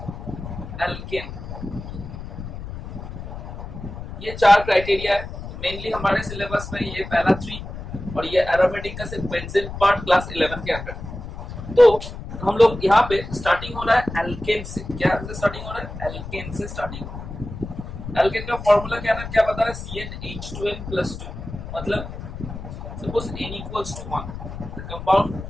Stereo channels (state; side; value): noise; left; rumble, 10 dB below the sound